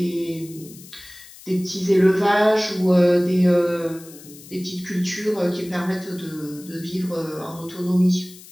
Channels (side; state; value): left; noise; hiss, 19 dB below the sound